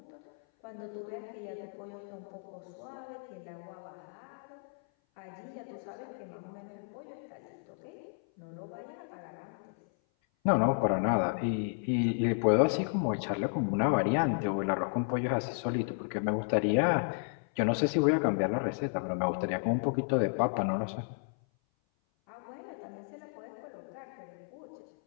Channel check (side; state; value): right; silent; 56 dB below the other